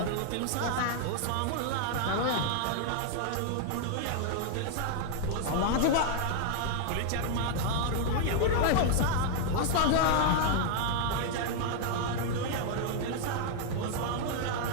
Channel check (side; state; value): both; different; correlation 0.00